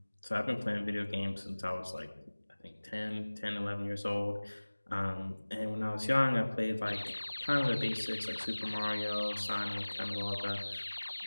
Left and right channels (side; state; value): both; inverted; correlation -1.00